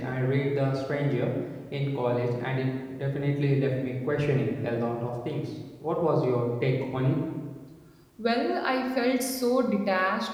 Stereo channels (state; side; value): identical; both; correlation 1.00